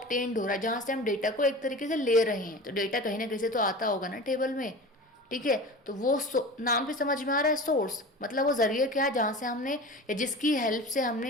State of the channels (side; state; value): both; normal; correlation 0.34